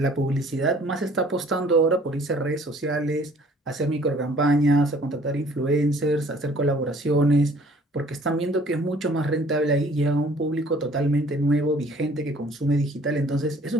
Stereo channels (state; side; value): normal; both; correlation 0.55